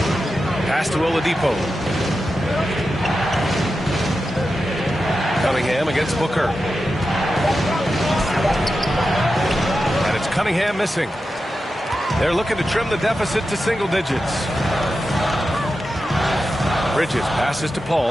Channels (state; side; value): normal; both; correlation 0.91